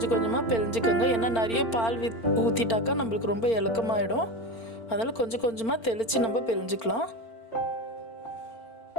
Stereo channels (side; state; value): right; late; 4.4 ms